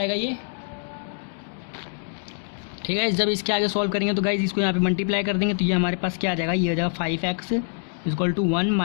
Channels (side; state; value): right; silent; 62 dB below the other